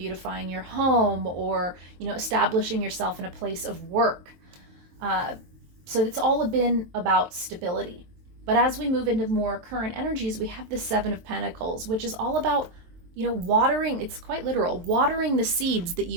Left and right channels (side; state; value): left; late; 22 ms